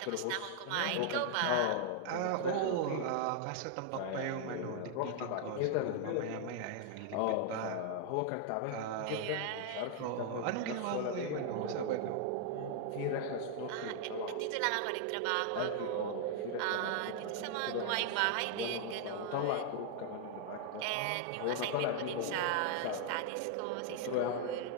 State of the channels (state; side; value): different; both; correlation 0.00